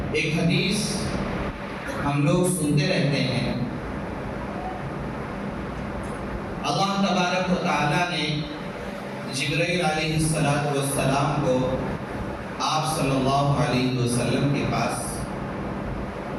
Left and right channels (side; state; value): both; identical; correlation 1.00